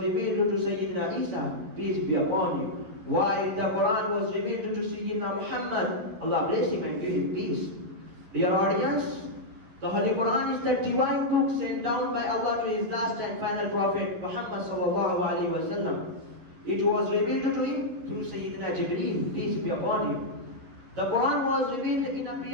revealed to Sayyidina Isa, peace be upon him. While the Quran was revealed to Sayyidina Muhammad, Allah bless him and give him peace. Dear audience, the Holy Quran is the divine book sent down by Allah to His last and final Prophet Muhammad sallallahu alaihi wasallam. It was revealed to him through Sayyidina Jibreel, peace be upon him. The Quran was revealed in a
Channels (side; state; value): left; late; 11 ms